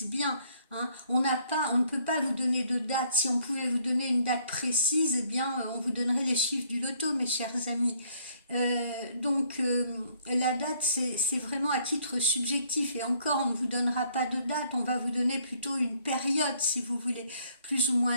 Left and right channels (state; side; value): inverted; both; correlation -0.65